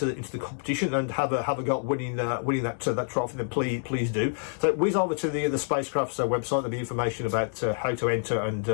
the competition and have a go at winning that trophy, then please do. So whiz over to the Spacecraft's website. There'll be information about how to enter and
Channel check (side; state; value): right; silent; 60 dB below the other